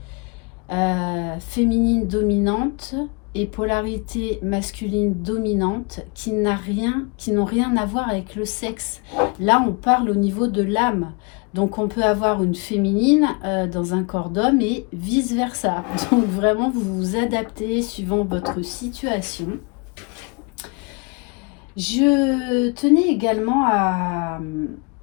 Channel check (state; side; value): quieter; right; 31.7 dB